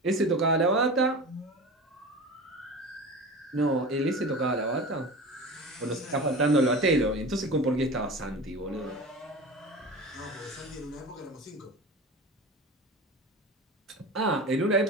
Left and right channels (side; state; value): both; normal; correlation 0.32